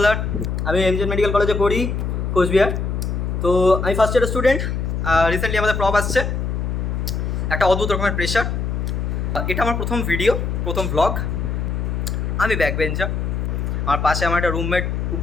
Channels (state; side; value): noise; left; hum, 1 dB below the sound